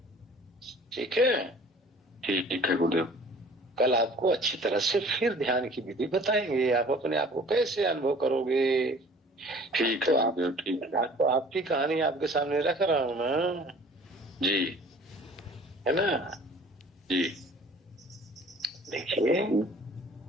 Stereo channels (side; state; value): both; normal; correlation 0.49